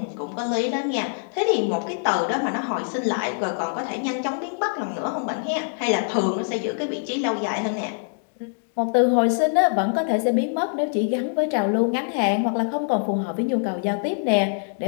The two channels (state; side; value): silent; right; digital silence